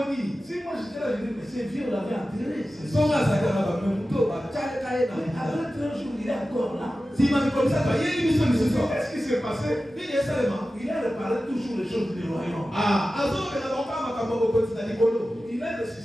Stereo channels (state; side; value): normal; both; correlation 0.94